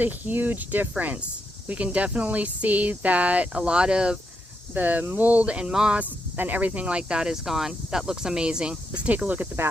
huge difference. We can definitely see that a lot of the mold and moss and everything like that is gone. That looks amazing. Let's take a look at the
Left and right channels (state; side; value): normal; both; correlation 0.82